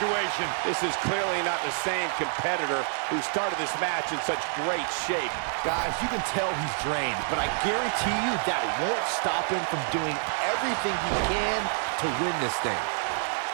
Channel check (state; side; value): silent; left; 60 dB below the other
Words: This is clearly not the same competitor who started this match in such great shape. Guys, you can tell he's drained, but I guarantee you that won't stop him from doing everything he can to win this thing.